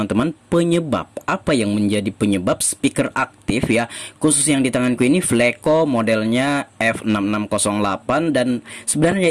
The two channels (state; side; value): identical; both; correlation 1.00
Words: penyebab, apa yang menjadi penyebab speaker aktif ya. Khusus yang di tanganku ini Fleco modelnya F6608. Dan